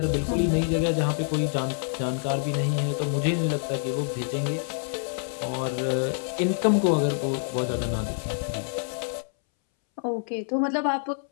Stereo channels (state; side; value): silent; right; 60 dB below the other